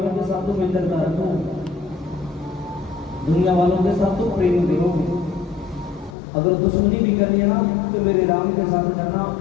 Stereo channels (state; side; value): drops out; right; at 6.2 s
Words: के साथ तो मित्रता रखो, दुनिया वालों के साथ तो प्रेम करो। अगर दुश्मनी भी करनी है ना तो मेरे राम के साथ करना।